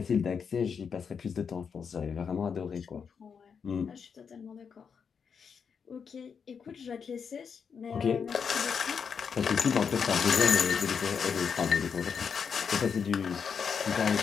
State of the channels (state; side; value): quieter; right; 6.4 dB